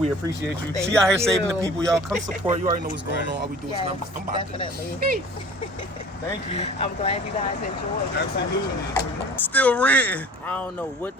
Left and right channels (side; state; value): both; normal; correlation 0.45